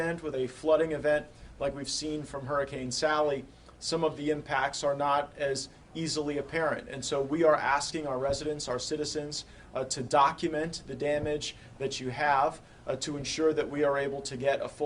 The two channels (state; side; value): identical; both; correlation 1.00